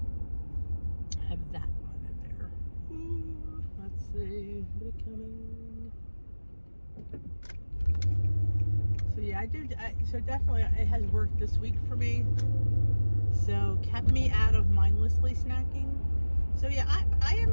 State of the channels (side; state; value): both; inverted; correlation -1.00